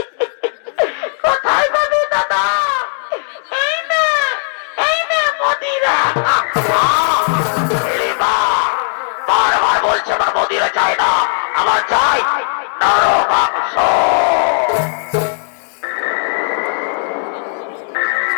কোথায় পাবি দাদা? এই না মদিরা। হিড়িম্বা বারবার বলছে আমার মদিরা চাই না, আমার চাই নরম মাংস।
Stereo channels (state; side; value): silent; right; 69 dB below the other